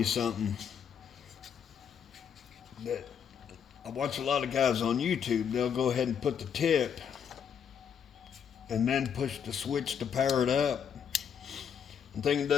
something that I watch a lot of guys on YouTube. They'll go ahead and put the tip and then push the switch to power it up. The thing it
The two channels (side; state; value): right; quieter; 7.7 dB